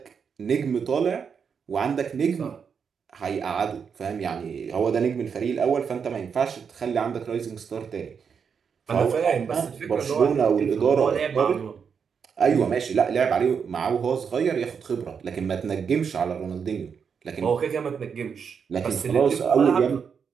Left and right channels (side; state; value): left; quieter; 6.5 dB